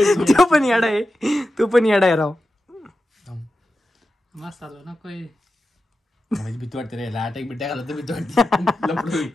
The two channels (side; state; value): both; normal; correlation 0.92